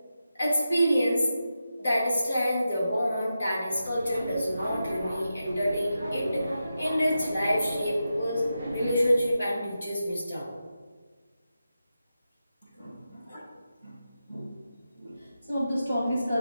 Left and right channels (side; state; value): both; inverted; correlation -0.89